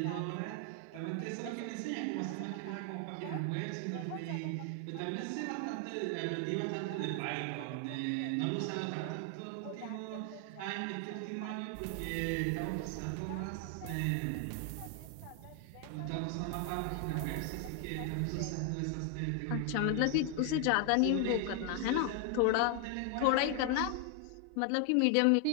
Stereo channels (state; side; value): different; both; correlation 0.00